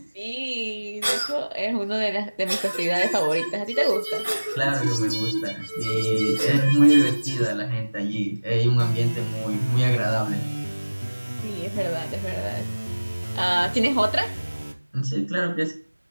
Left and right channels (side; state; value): both; inverted; correlation -1.00